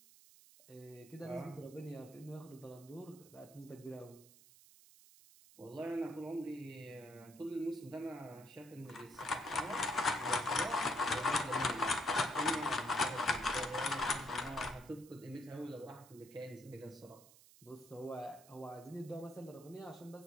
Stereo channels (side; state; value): right; noise; hiss, 22 dB below the sound